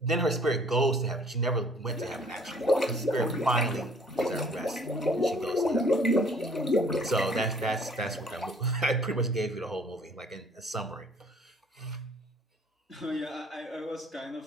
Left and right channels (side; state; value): both; normal; correlation 0.56